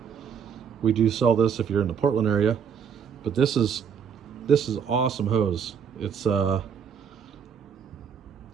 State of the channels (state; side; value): quieter; left; 7.2 dB